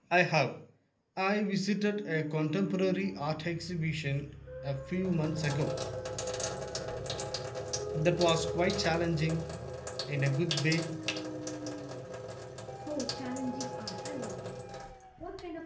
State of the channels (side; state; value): both; identical; correlation 1.00